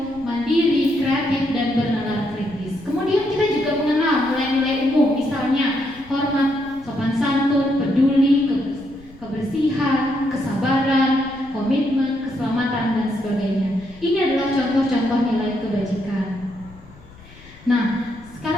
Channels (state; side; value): noise; left; rumble, 22 dB below the sound